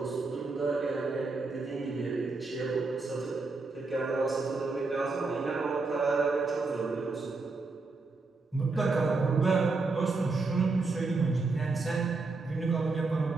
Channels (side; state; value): left; quieter; 3.8 dB